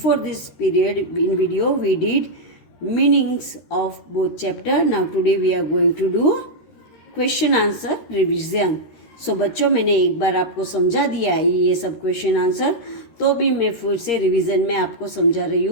this period in video we did meanings of both chapter. Now today we are going to do question answer revision. So बच्चों, मैंने एक बार आपको समझा दिया है ये सब क्वेश्चन आंसर, तो भी मैं फिर से रिवीजन में आपको समझा रही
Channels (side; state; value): right; late; 13 ms